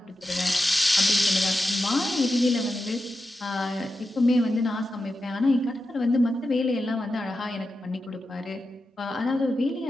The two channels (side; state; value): both; normal; correlation 0.90